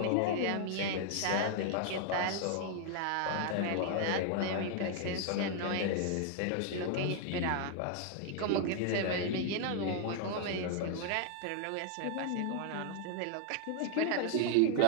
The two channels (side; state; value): both; different; correlation 0.00